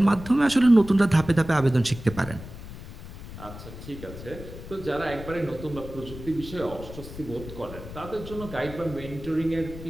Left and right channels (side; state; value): left; noise; rumble, 13 dB below the sound